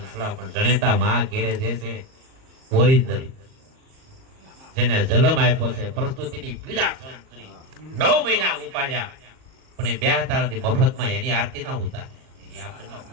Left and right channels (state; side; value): late; left; 38 ms